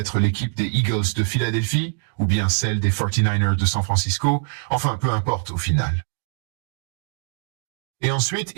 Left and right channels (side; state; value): left; silent; digital silence